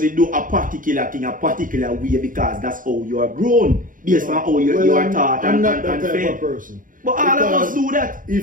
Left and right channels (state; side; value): late; left; 0.39 ms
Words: do a particular thing a particular way because that's how you are grown, based on how you are taught I'm not that type of person. But all of us do that.